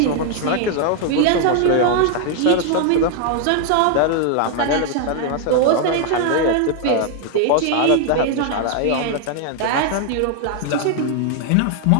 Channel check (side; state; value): both; different; correlation 0.00